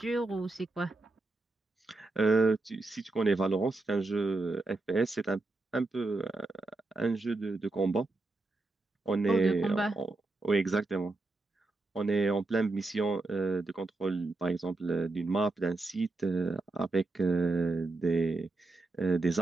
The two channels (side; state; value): left; quieter; 3.1 dB